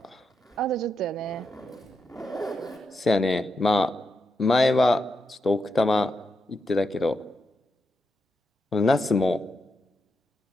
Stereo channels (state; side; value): normal; both; correlation 0.85